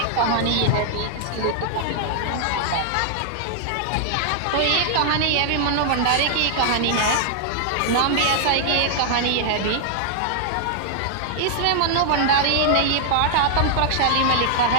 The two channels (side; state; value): both; different; correlation -0.01